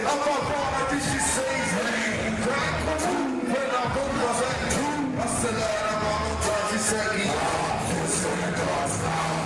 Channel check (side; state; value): both; identical; correlation 1.00